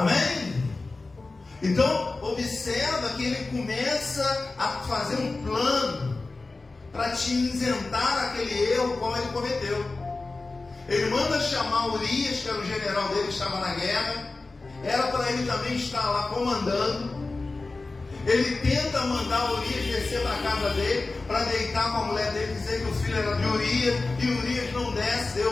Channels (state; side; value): quieter; right; 3.5 dB